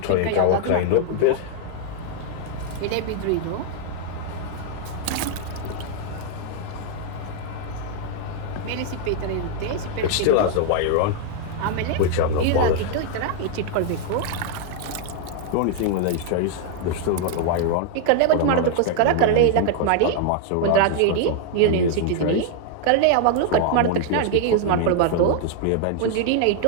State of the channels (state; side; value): different; both; correlation 0.00